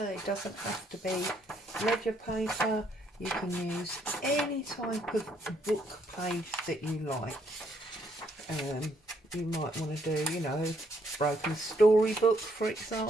It doesn't have to be ledger paper. You can use any type of book page that you like. You might want to do, you know, broken storybook, for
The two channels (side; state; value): both; normal; correlation 0.71